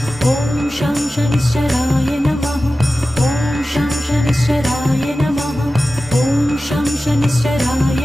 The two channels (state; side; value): normal; both; correlation 0.95